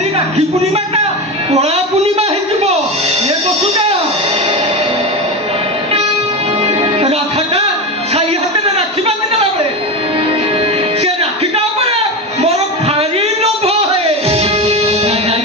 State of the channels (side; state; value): both; normal; correlation 0.20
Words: ରାକ୍ଷୀ ପୂର୍ଣ୍ଣିମାଟା କଳା ପୂର୍ଣ୍ଣିମା ହେଇଯିବ। ଏ ବସୁଟା ରାଧାଟା ସାଇ ହାତରେ ରାକ୍ଷୀ ବାନ୍ଧି ଦେଲା ବେଳେ ସେ ରାକ୍ଷୀଟା ଉପରେ ମୋର ଭାରି ଲୋଭ ହଏ।